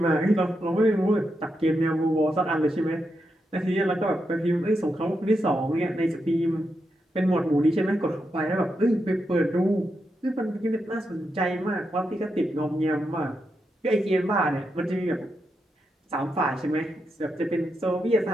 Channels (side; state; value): both; normal; correlation 0.85